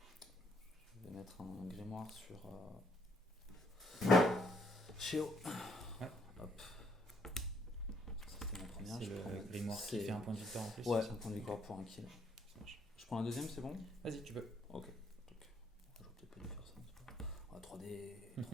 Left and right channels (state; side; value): normal; both; correlation 0.69